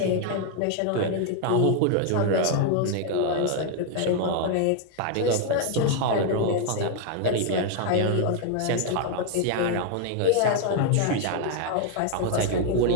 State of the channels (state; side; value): different; both; correlation 0.01